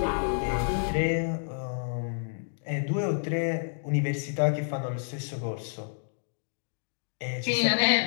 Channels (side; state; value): right; silent; digital silence